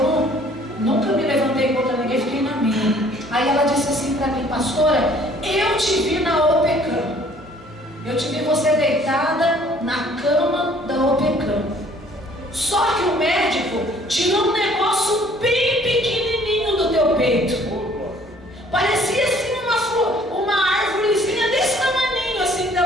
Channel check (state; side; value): normal; both; correlation 0.57